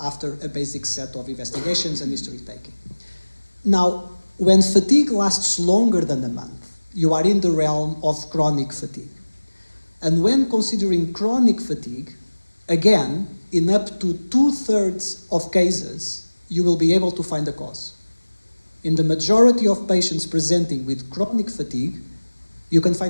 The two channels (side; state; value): both; inverted; correlation -1.00